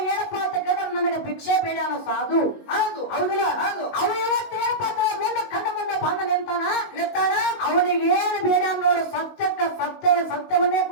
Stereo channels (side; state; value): right; late; 19 ms